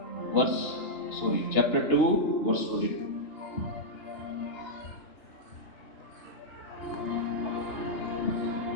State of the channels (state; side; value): late; right; 2.8 ms